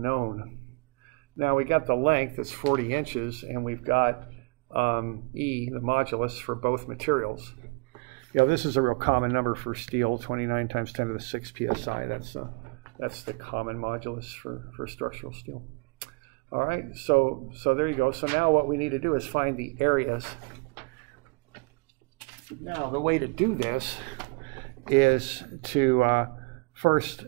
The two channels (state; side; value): quieter; left; 29.3 dB